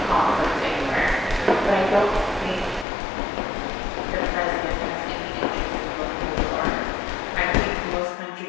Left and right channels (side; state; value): right; drops out; at 2.9 s